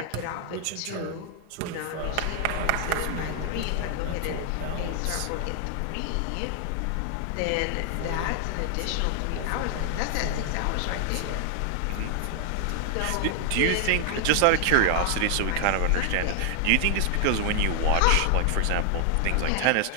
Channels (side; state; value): both; different; correlation 0.00